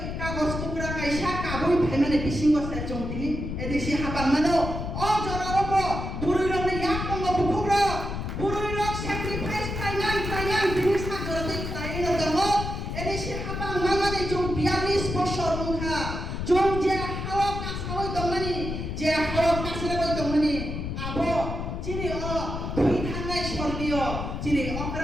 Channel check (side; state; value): left; noise; rumble, 5 dB below the sound